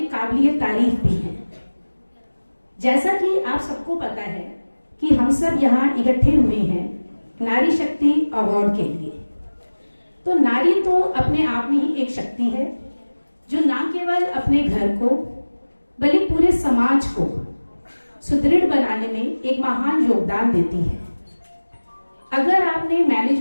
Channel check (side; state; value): both; inverted; correlation -1.00